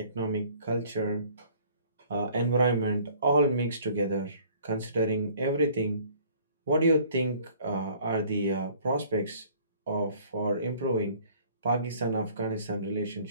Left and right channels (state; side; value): inverted; both; correlation -0.55